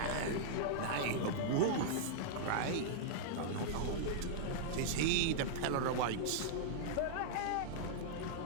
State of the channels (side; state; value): both; different; correlation -0.02